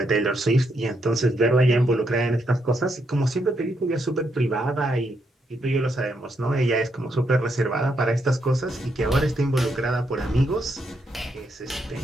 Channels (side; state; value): both; normal; correlation 0.78